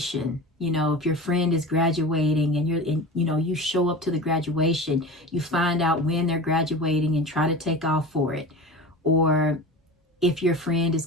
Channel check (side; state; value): both; normal; correlation 0.32